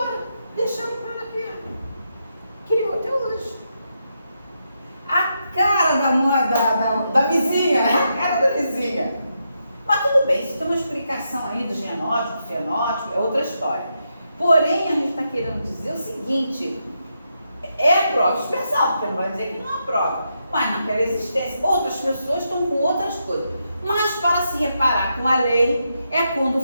deixando para ela aqui. Criou até hoje. A cara da mãe, da vizinha, a cara da vizinha. Mas tudo bem, isso tem uma explicação aí do genótipo, fenótipo, é outra história. Porém, a gente está querendo dizer o seguinte, é prova expressão, porque não vai dizer que não é prova, mas naquela existência, outras pessoas estão com outras coisas. Mas para se reparar com a lei, é quando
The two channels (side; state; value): both; inverted; correlation -0.83